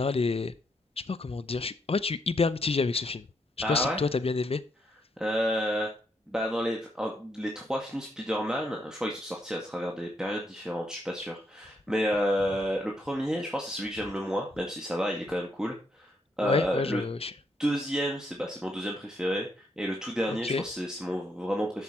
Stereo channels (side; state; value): both; normal; correlation 0.76